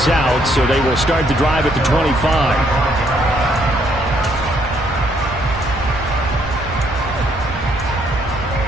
out, so they will start the drive at the 25.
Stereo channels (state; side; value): normal; both; correlation 0.70